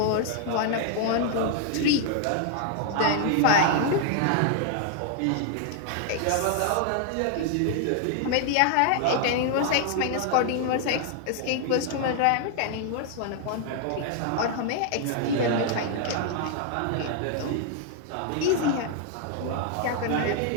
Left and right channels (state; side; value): different; both; correlation 0.00